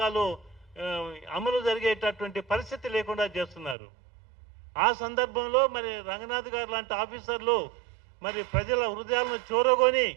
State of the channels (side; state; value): left; drops out; at 3.8 s